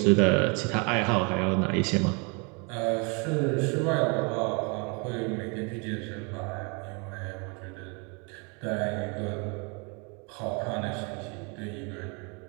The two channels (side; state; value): left; quieter; 32.7 dB